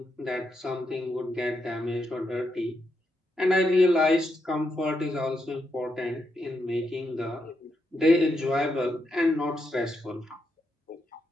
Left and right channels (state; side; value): normal; both; correlation 0.82